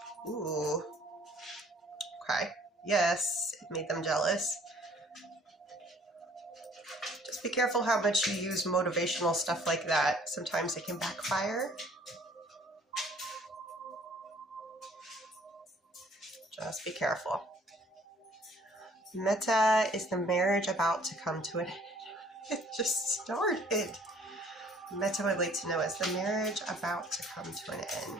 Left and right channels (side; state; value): both; normal; correlation 0.57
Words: Ooh. Okay. Yes, it made them jealous. Just be careful how much you use motivational stuff like that. Sometimes it can backfire. Just be careful. Meta, is the marriage about to come to an end? It just started. Meta would like to know, is the marriage about to come to an